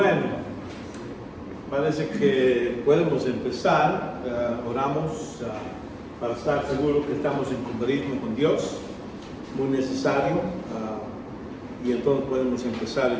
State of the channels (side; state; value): both; identical; correlation 1.00